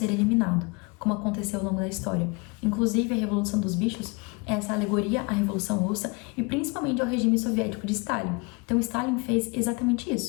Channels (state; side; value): quieter; right; 29.0 dB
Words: eliminado, como aconteceu ao longo da história. Inclusive, a Revolução dos Bichos é essa alegoria à Revolução Russa e principalmente ao regime soviético de Stalin. Então, Stalin fez exatamente